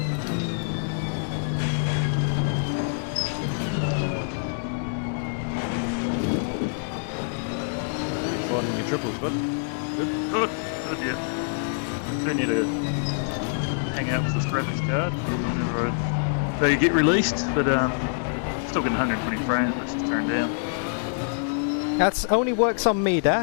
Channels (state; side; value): silent; right; digital silence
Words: Finding your triples, bud. Good, yeah. Do need to hang out with this graphics card whenever they get released, but still getting 120 frames, but it's just turned down. That's only works on me,